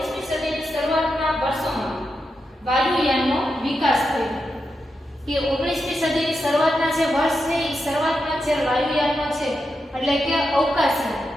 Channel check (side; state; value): both; normal; correlation 0.87